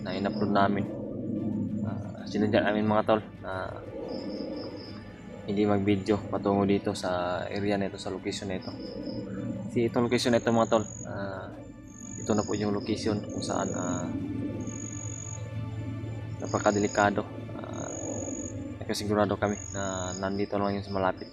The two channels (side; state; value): both; identical; correlation 1.00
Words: na in-upload namin. Sinadya namin, mga tol, na hindi mag-video patungo dito sa area na ito, sa location na ito. Kasi itong location na ito, mga tol, ito na po yung location kung saan napakadelikado. Nagkasigurado kami na nandito lang yung malapit